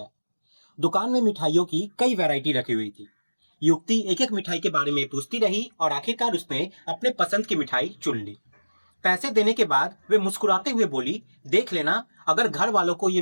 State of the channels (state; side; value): inverted; both; correlation -1.00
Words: दुकान में मिठाइयों की कई वैरायटी रखी हुई थी। युवती एक एक मिठाई के बारे में पूछती रही और आखिरकार उसने अपने पसंद की मिठाई चुन ली। पैसे देने के बाद वे मुस्कुराते हुए बोली, देख लेना, अगर घर वालों को ये